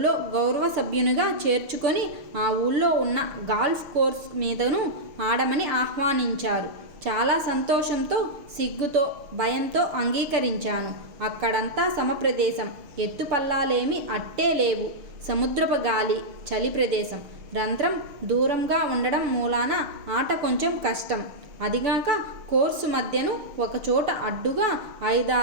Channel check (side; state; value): left; late; 6.4 ms